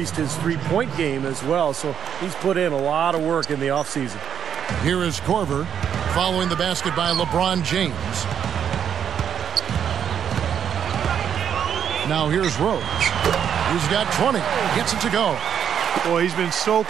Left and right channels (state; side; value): quieter; left; 8.4 dB